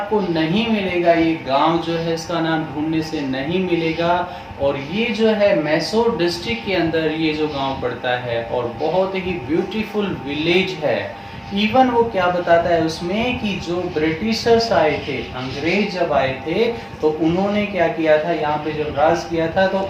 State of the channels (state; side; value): identical; both; correlation 1.00